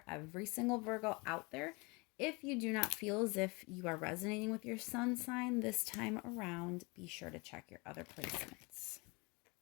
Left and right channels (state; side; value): quieter; right; 27.7 dB